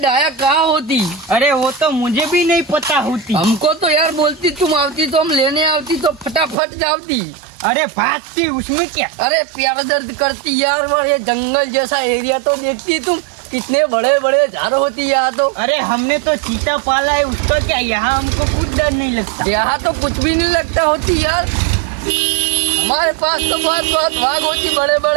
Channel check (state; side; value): drops out; left; at 6.6 s